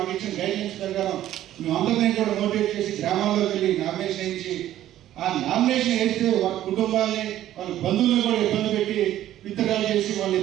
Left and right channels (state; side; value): quieter; left; 12.8 dB